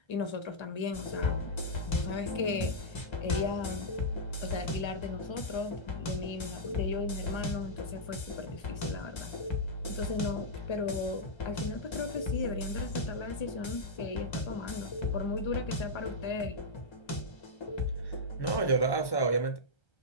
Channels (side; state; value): right; late; 1.3 ms